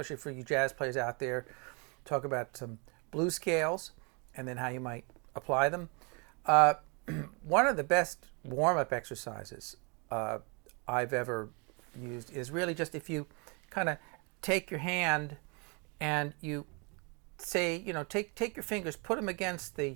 for you jazz players out there. Talk about some blues scales and then how you might apply them. Uh, One of the best warm-up exercises I've ever used is really just if you kind of take your hand and you say, take your fingers, put them against the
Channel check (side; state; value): left; quieter; 32.9 dB